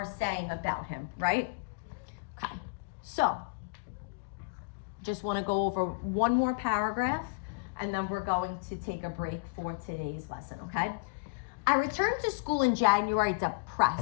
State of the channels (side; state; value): right; quieter; 29.9 dB